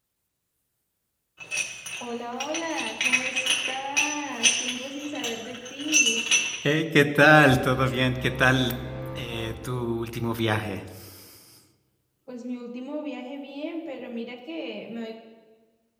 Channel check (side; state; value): both; identical; correlation 1.00